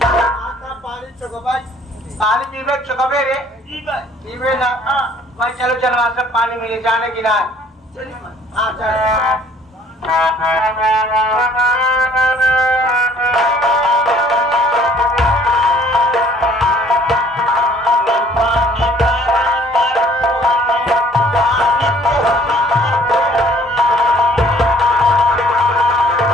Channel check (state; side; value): normal; both; correlation 0.57